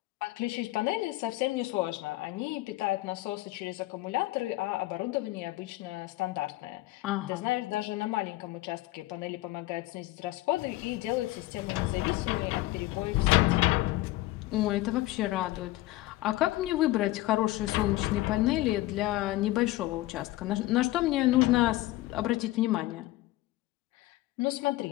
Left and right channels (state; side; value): quieter; right; 17.6 dB